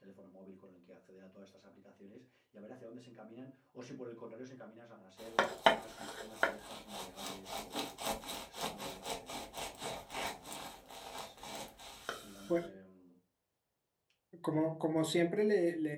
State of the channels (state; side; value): identical; both; correlation 1.00